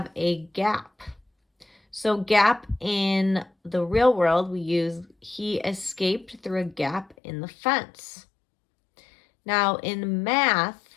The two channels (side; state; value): right; drops out; at 7.2 s